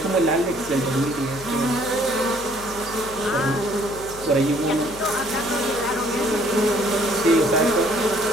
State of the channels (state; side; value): noise; left; hum, 17 dB below the sound